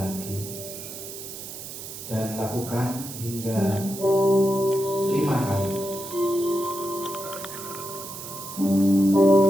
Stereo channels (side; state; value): right; noise; hiss, 10 dB below the sound